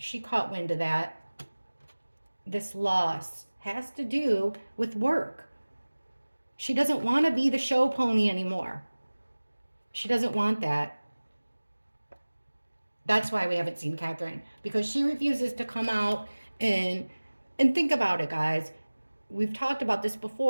caught wind of that. This loss has to do with work. She doesn't want to be the show pony anymore. She doesn't want that. That's why we haven't seen Catherine, because she refuses to come out and think about it, guys. We've talked about this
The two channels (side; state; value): both; inverted; correlation -1.00